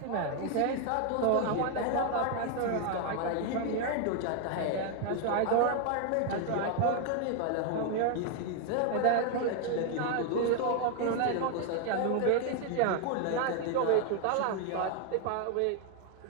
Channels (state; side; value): different; both; correlation 0.00